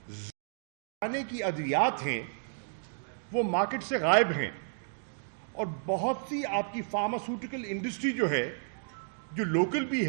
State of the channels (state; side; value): silent; left; digital silence